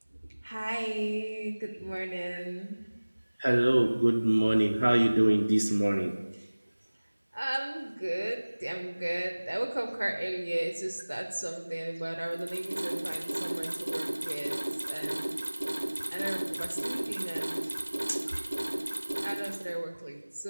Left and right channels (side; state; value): both; inverted; correlation -1.00